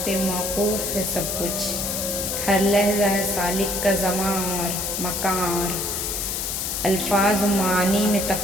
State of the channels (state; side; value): noise; left; hiss, 2 dB below the sound